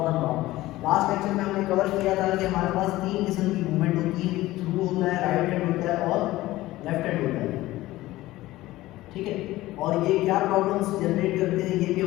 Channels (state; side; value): quieter; right; 17.1 dB